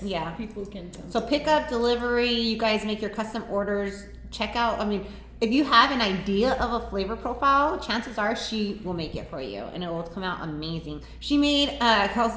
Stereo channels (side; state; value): both; identical; correlation 1.00